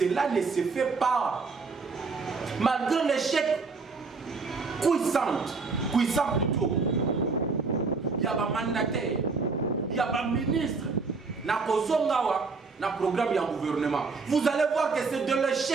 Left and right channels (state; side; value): quieter; left; 4.4 dB